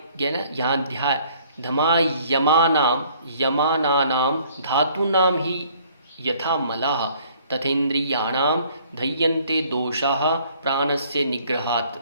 ये ना यहाँ ध्याय, धमायमानाम यमानानाम धातूनाम ही यथा मलाः तथेन्द्रियाणाम धैयन्ते दोषाः प्राणस्य निग्रहात्।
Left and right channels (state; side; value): inverted; both; correlation -0.59